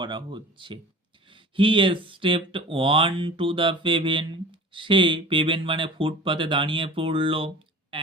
হচ্ছে। হি স্টেপড অন টু দ্য পেভেন, সে পেভেন মানে ফুটপাতে দাঁড়িয়ে পড়ল।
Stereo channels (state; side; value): normal; both; correlation 0.41